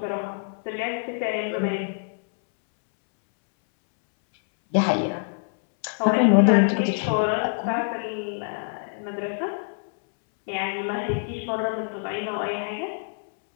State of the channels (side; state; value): right; silent; 61 dB below the other